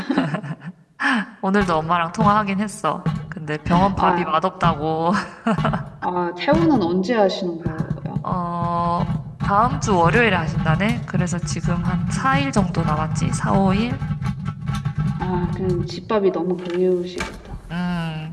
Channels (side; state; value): both; identical; correlation 1.00